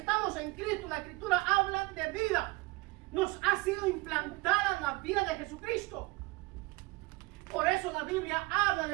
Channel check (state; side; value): quieter; left; 23.6 dB